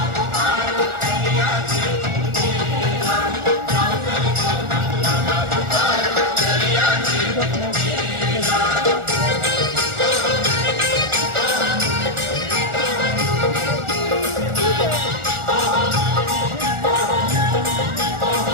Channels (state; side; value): late; left; 1.4 ms